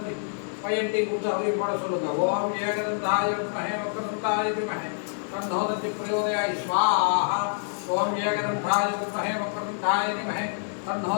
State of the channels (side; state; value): right; silent; digital silence